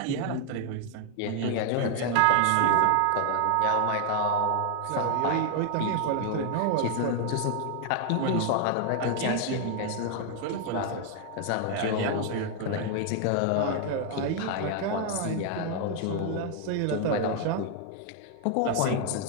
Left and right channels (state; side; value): different; both; correlation 0.00